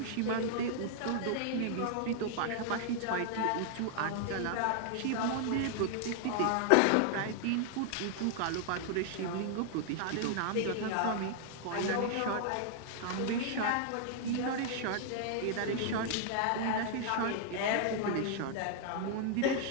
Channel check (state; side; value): different; both; correlation 0.00